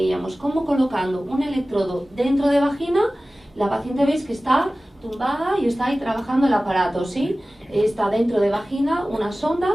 como colocando un electrodo dentro de vagina, la paciente veis que está tumbada y está ahí trabajando el aparato, ¿sí? Está dentro de vagina una sonda,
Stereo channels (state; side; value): normal; both; correlation 0.97